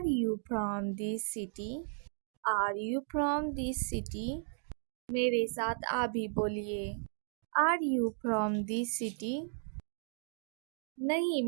you from this city? Are you from this city? मेरे साथ आप भी बोलिए। Are you from this city? नहीं,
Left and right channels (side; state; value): left; silent; digital silence